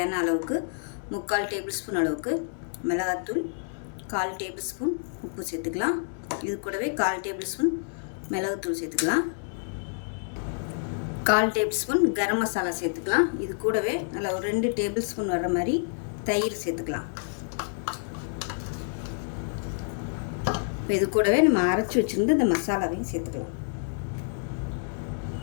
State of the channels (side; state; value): right; silent; digital silence